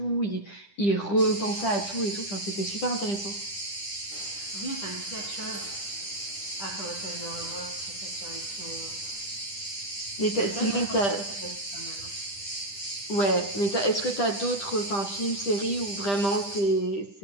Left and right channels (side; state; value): right; late; 10 ms